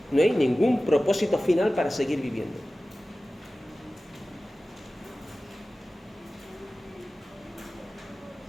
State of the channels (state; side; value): normal; both; correlation 0.96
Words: No hay ningún propósito final para seguir viviendo.